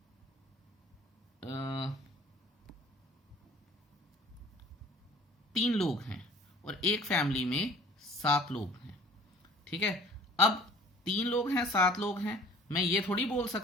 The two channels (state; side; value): normal; both; correlation 0.50